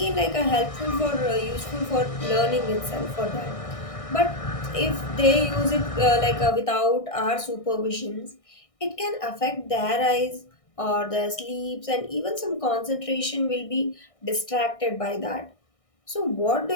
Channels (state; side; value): late; right; 1.6 ms